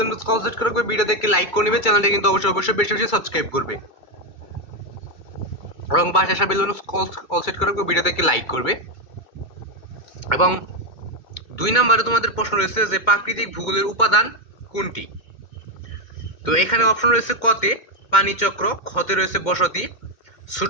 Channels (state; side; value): late; right; 2.3 ms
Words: আইকন কল সেট করে ভিডিও দেখে লাইক করে নেবে, চ্যানেলটা কিন্তু অবশ্যই বেশি বেশি সাবস্ক্রাইব করবে এবং পাশে বেল আইকন কল সেট করে ভিডিও দেখে লাইক করবে। এবং 2 নম্বরে তোমাদের প্রশ্ন রয়েছে যে প্রাকৃতিক ভূগোলের উপাদান কোনটি। তো এখানে অপশন রয়েছে কতে পানিচক্র, খতে রয়েছে বসতি,